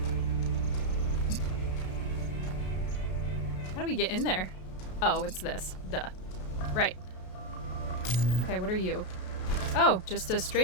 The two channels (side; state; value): right; late; 33 ms